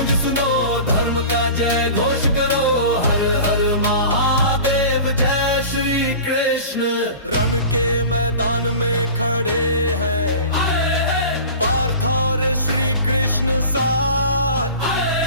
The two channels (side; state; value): both; inverted; correlation -0.37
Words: सुनो, धर्म का जय घोष करो। हर हर महादेव, जय श्री कृष्ण। रण के मैदान में खड़े हैं पार्थ और श्री कृष्ण साथ।